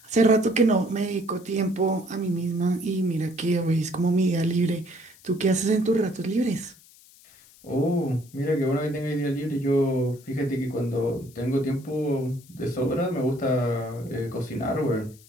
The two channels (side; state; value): left; noise; hiss, 25 dB below the sound